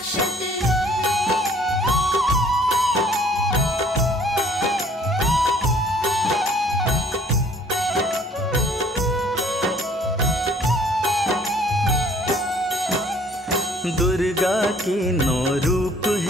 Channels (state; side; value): normal; both; correlation 0.57